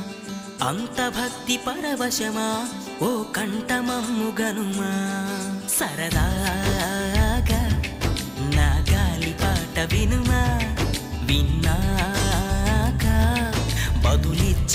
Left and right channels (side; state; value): both; identical; correlation 1.00